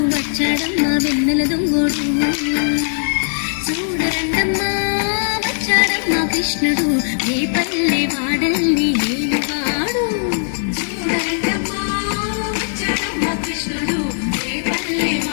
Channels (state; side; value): silent; right; digital silence